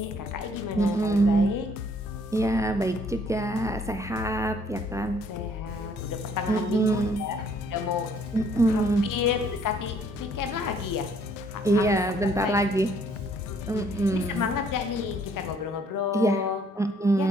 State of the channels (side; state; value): both; normal; correlation 0.63